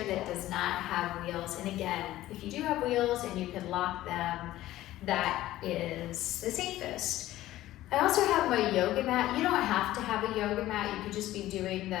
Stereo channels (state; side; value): quieter; right; 15.2 dB